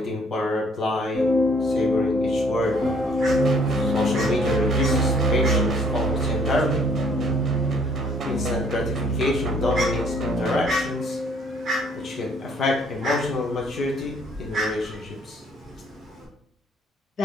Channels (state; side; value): normal; both; correlation 0.62